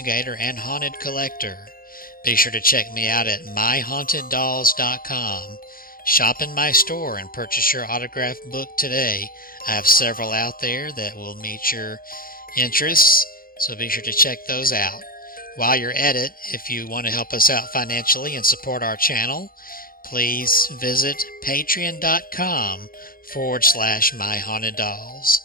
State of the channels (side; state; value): right; late; 0.42 ms